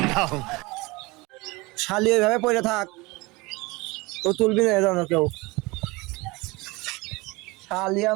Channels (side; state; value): left; quieter; 23.7 dB